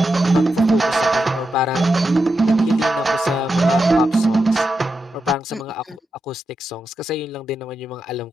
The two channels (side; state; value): both; normal; correlation 0.87